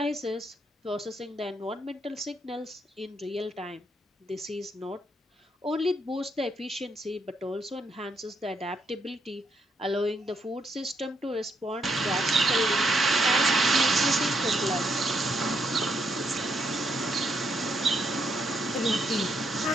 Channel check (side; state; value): both; normal; correlation 0.76